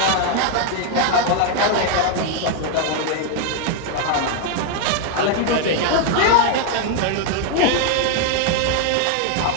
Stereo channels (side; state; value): both; different; correlation 0.00